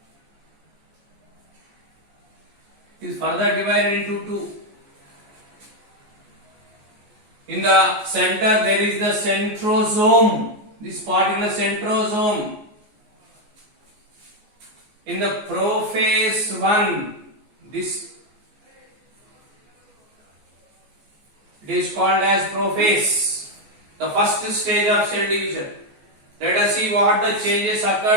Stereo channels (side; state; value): left; late; 14 ms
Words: Is further divided into 2. In the center there is the centrosome. This particular centrosome. In the prophase 1, this it is called as prophase, the first stage of cell division. Let us see what the changes